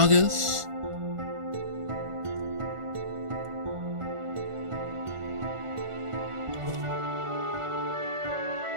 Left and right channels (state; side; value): late; left; 1.4 ms